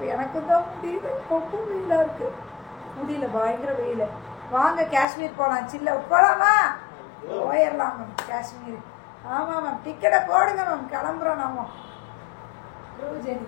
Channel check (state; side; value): drops out; right; at 5.1 s